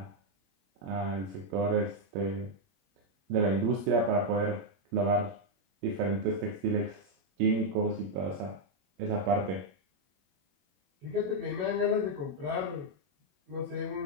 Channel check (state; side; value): late; left; 21 ms